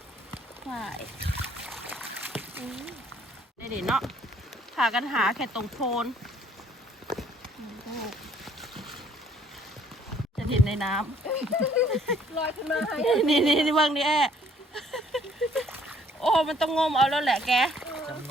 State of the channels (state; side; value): normal; both; correlation 0.61